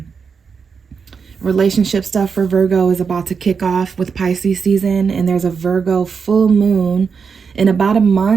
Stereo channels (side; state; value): left; quieter; 5.8 dB